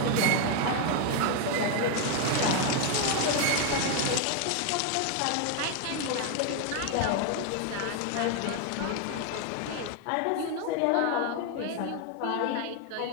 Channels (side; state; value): both; different; correlation 0.01